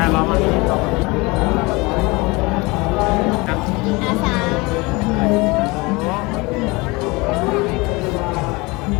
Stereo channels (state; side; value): quieter; right; 24.8 dB